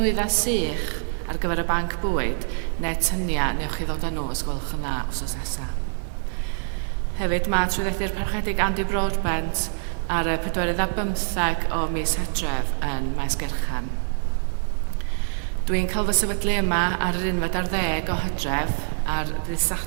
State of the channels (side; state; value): left; silent; 62 dB below the other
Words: sych ar gyfer y banc bwyd, neu tyniau, newch chi ddod â nhw os gwelwch yn dda wsos nesaf. Hefyd, mae trwyddedi'r parchedig Andy Broadbent ar y 15 o mis Hydref yn Maes Gerchan. Dwi'n cael fy sefydlu yma ar yr 11 o Hydref ar ddydd